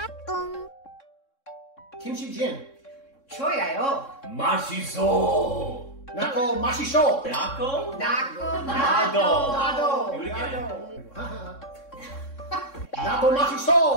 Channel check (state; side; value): late; right; 3.6 ms